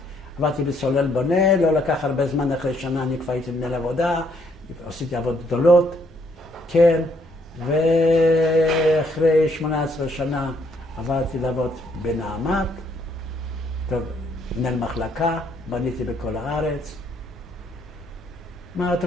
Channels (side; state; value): both; normal; correlation 0.69